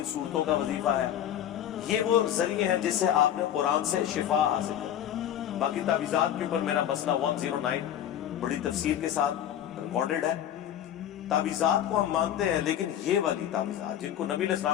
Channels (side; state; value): right; quieter; 10.7 dB